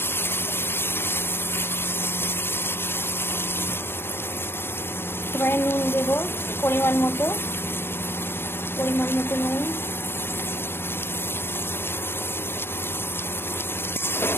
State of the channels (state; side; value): late; right; 0.11 ms